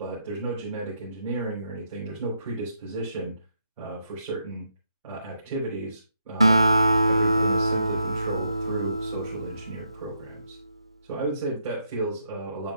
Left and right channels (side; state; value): both; inverted; correlation -0.80